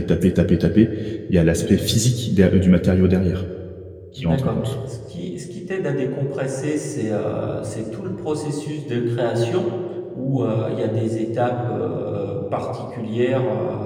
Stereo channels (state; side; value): identical; both; correlation 1.00